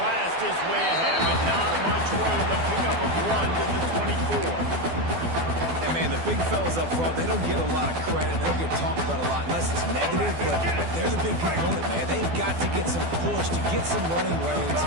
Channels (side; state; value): left; late; 12 ms